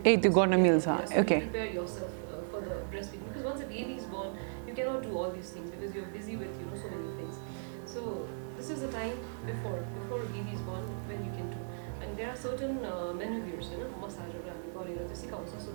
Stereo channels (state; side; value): silent; left; digital silence